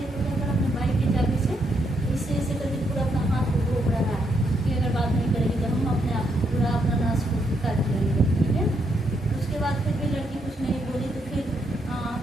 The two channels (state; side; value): normal; both; correlation 0.77